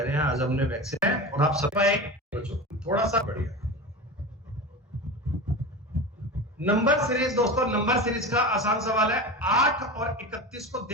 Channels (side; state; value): both; normal; correlation 0.28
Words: रहे हैं आज हमने वैक्सीन है और आप सब आए थोड़ा सा बढ़िया। नंबर सीरीज दोस्तों, नंबर सीरीज का आसान सवाल है, 8 और 31 को